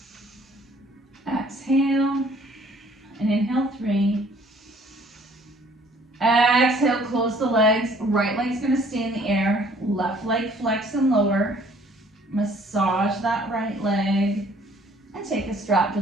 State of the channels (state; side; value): normal; both; correlation 0.58